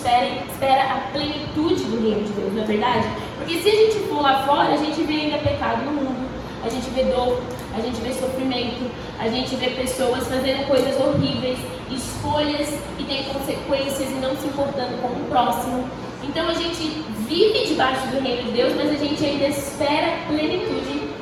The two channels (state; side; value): identical; both; correlation 1.00